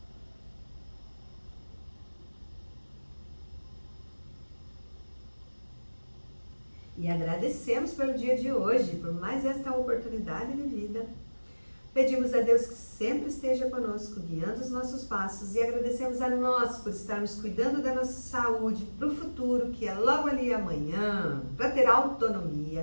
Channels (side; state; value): both; inverted; correlation -1.00